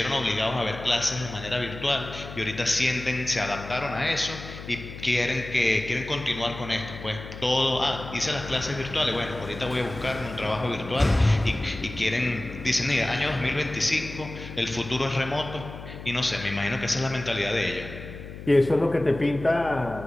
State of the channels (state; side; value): noise; left; hum, 12 dB below the sound